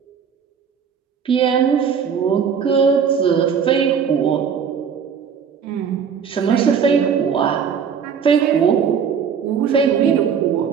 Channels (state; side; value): quieter; left; 7.0 dB